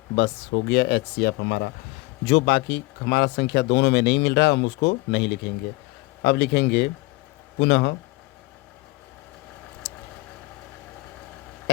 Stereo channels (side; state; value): right; quieter; 22.4 dB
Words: बस हो गया HCF हमारा। जो बाकी हमारा संख्या दोनों में नहीं मिल रहा हम उसको नहीं लिखेंगे। अब लिखेंगे पुनः